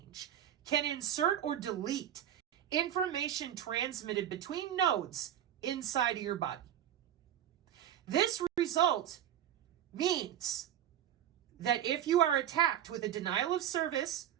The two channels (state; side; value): quieter; left; 10.6 dB